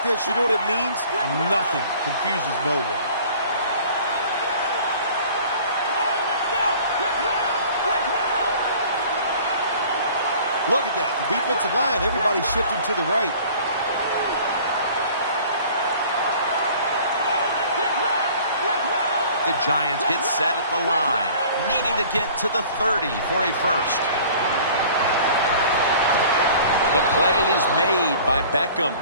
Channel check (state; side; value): inverted; both; correlation -0.48